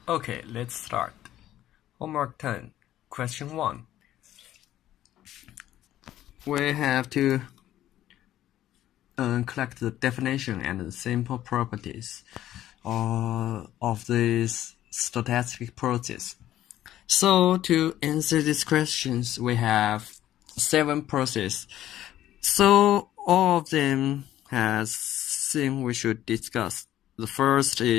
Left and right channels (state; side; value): quieter; right; 12.9 dB